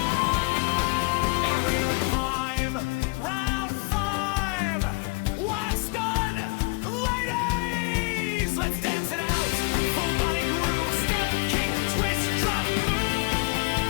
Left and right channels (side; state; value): right; quieter; 28.8 dB